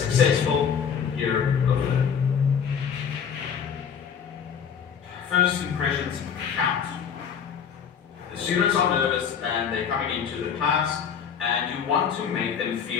year of learning. First impressions count. The students are nervous and they're coming into the class and you want to make them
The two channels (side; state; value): right; quieter; 7.4 dB